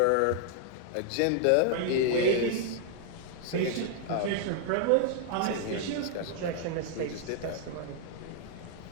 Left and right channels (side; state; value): both; different; correlation 0.00